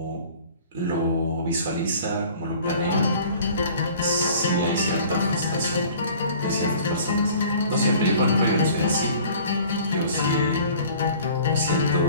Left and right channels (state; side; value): inverted; both; correlation -0.48